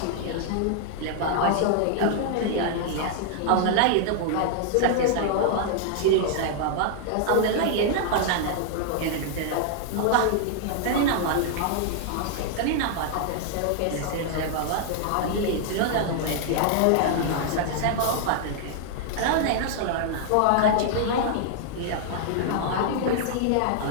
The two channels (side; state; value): both; different; correlation -0.01